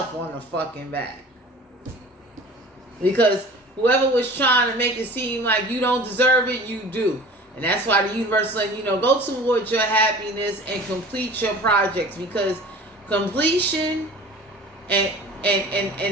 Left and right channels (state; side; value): normal; both; correlation 0.42